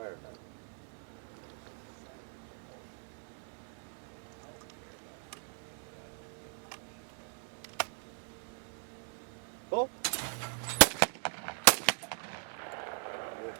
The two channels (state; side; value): silent; left; 52 dB below the other